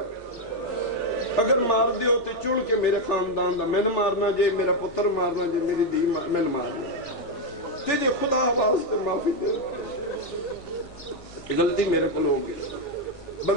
اگر مار دیو تو چڑ کے میرے خاندان دا میں نہ مارنا جے، میرا پتر مارنا جے، میری دی میں نہ مارنا، تے جے خدا واسطے معافی دے، غلطی میرے کو ہو گئی۔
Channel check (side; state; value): right; noise; hum, 25 dB below the sound